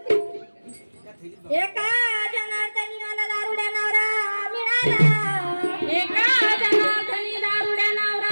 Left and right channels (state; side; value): inverted; both; correlation -1.00